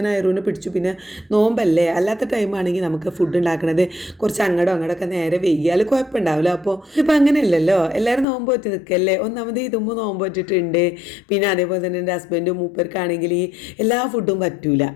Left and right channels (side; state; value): right; drops out; at 8.2 s